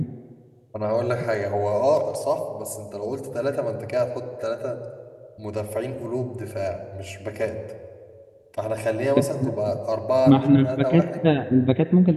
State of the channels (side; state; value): both; identical; correlation 1.00